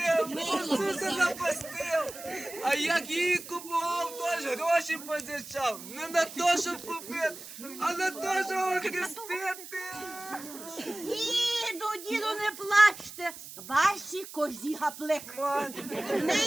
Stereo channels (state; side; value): noise; right; hiss, 14 dB below the sound